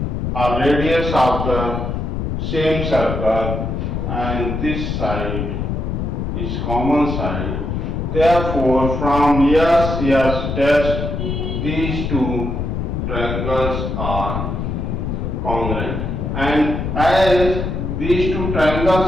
are radius of the same circle, and this side is common side. Therefore, from yes test, these two triangles are congruent. And as these two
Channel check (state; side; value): noise; left; rumble, 2 dB below the sound